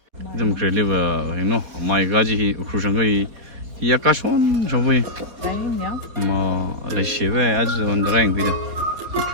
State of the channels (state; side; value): late; left; 4.1 ms